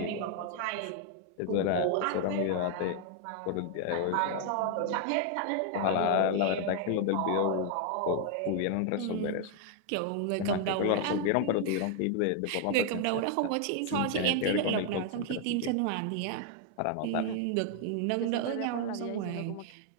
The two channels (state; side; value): different; both; correlation 0.00